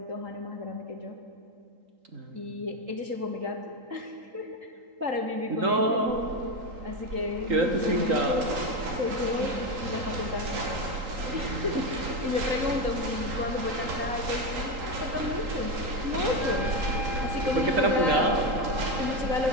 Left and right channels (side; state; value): left; late; 3.8 ms